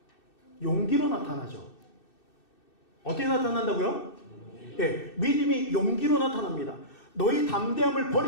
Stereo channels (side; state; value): right; late; 2.6 ms